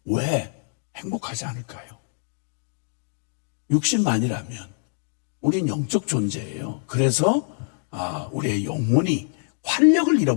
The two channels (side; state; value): right; silent; 62 dB below the other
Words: 왜 행복하지 않을까요? 육신만이라면 우린 영적 존재예요. 그래서 우리의 영혼이 활력을